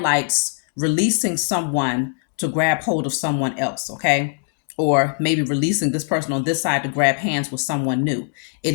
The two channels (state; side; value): silent; right; 65 dB below the other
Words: releasing someone to grab hold of someone else. Okay, or maybe releasing this person on this side to grab hands with someone new.